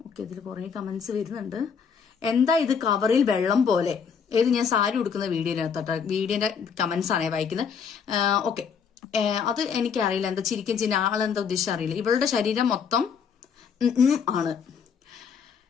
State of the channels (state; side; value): quieter; right; 6.6 dB